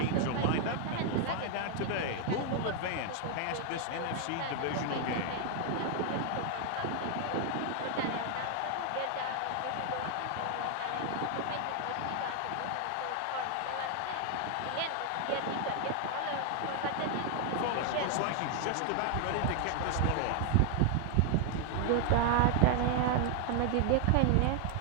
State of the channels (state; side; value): different; both; correlation 0.00